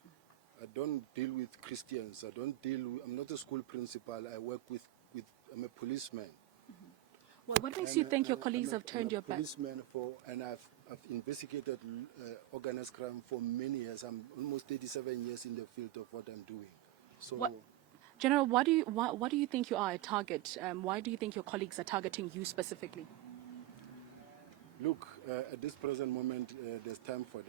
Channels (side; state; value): left; quieter; 15.5 dB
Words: I don't deal with Christians. I'm not a school principal. I work with. I'm a policeman. Mm-hmm. Well, what makes you think your colleagues have turned your back? I'm a policeman and I've investigated organized crime for many years. I'm almost 37 years in the field of what I'm doing. So. General, why do you think you are a target? Why do you think your colleagues are targeting you specifically? Look, at this present moment, there's time for